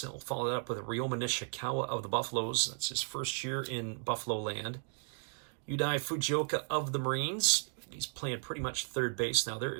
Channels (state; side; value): silent; left; 54 dB below the other